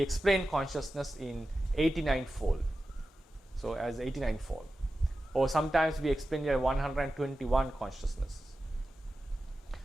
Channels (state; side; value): normal; both; correlation 0.93